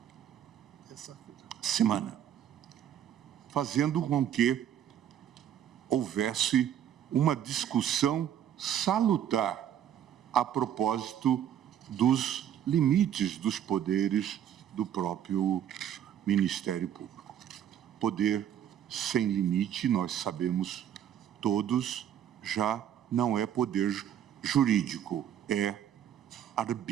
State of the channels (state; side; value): quieter; left; 10.0 dB